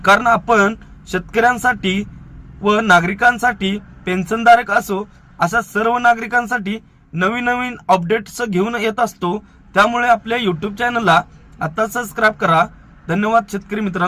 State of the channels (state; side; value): identical; both; correlation 1.00